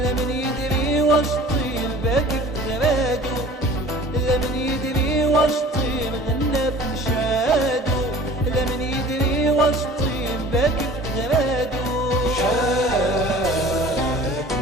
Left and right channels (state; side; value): normal; both; correlation 0.45